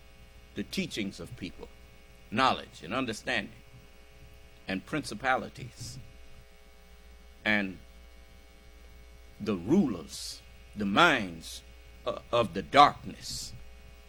the teachings of people, knowledge and understanding, and principalities, and the rulers, the minds of the darkness,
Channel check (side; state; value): both; identical; correlation 1.00